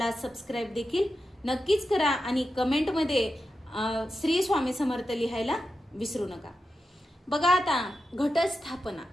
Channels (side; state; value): both; normal; correlation 0.90